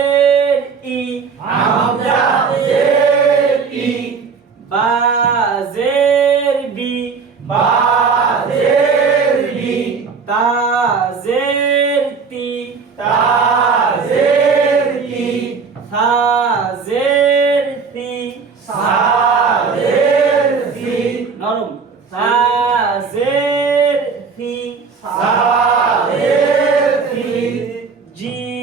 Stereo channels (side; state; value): left; quieter; 5.3 dB